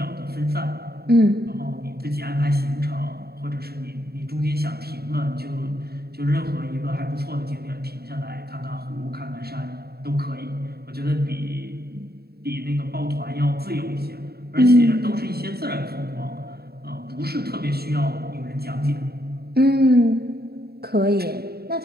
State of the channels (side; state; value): left; late; 0.46 ms